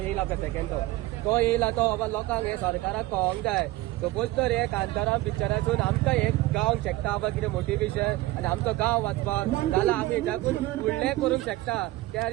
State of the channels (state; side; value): quieter; left; 18.1 dB